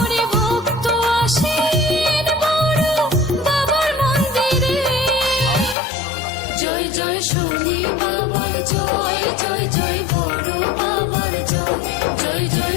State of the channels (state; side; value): drops out; right; at 5.8 s